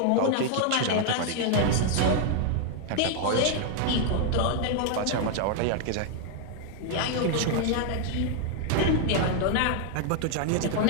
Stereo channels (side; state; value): both; different; correlation 0.00